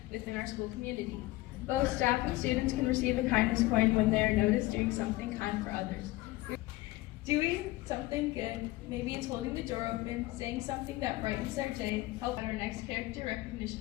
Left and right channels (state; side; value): quieter; right; 18.8 dB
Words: within our school community. Both staff and students can receive a kindness coin when they are noticed doing something kind for others. Doing something good, maybe it's holding the door open, saying something that brightens their day, help at our next character